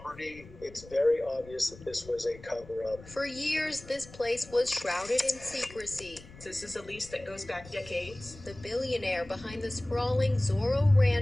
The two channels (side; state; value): left; noise; rumble, 19 dB below the sound